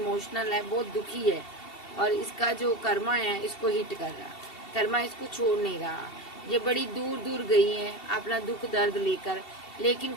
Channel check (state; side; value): late; right; 2.7 ms